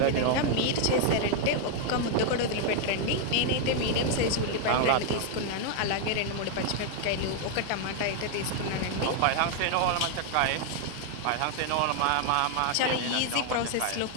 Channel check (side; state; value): both; different; correlation 0.00